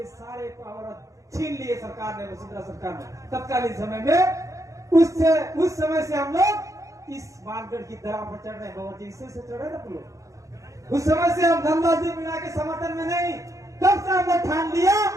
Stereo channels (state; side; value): late; left; 0.15 ms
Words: सारे पावर छीन लिए सरकार ने, वसुंधरा सरकार ने तत्कालीन समय में। उस समय से हम लोग इस मानगढ़ की दरा पर चढ़ रहे हैं। बाबा जी इससे चढ़े ना लोग। उस समय से हम नंदलाल जी मीणा के समर्थन में नहीं, तब से हमने ठान लिया